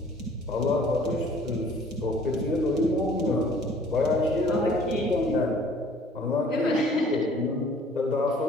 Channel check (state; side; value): normal; both; correlation 0.54